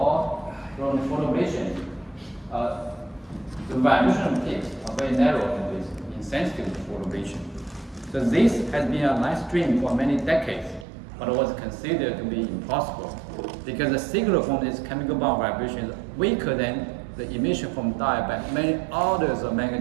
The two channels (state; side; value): drops out; left; at 10.9 s